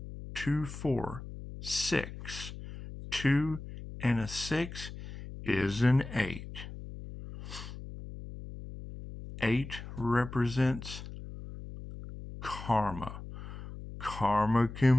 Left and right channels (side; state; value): left; noise; hum, 11 dB below the sound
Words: 2, 4, 6. 2 and a 6 is an 8. 8 represents karma. Karma